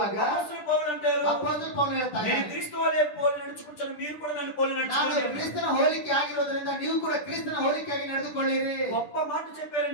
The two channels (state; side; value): late; right; 10 ms